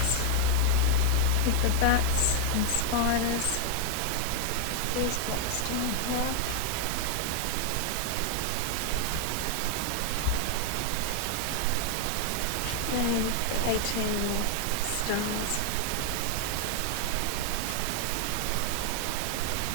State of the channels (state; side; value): different; both; correlation 0.00